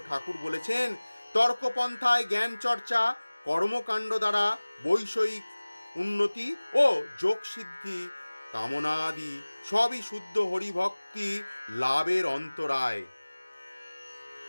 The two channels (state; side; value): inverted; both; correlation -1.00